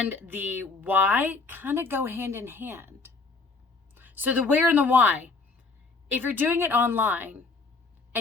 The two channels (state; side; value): quieter; right; 4.1 dB